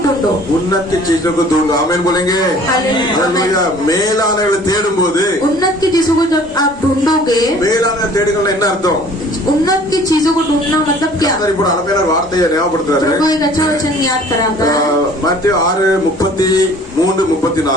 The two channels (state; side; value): normal; both; correlation 0.51